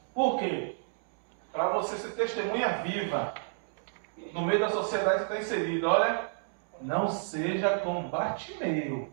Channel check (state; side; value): silent; left; 57 dB below the other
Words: Por quê? Para você ser testemunha viva no meio da sociedade que está inserido. Olha, não seja como Bartimeu.